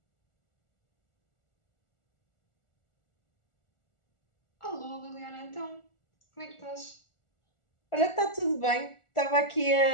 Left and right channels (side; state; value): right; late; 1.4 ms